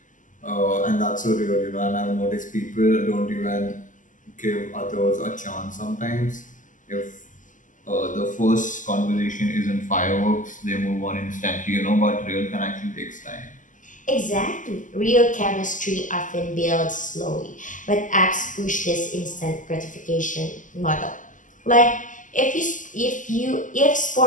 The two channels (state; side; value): late; right; 0.37 ms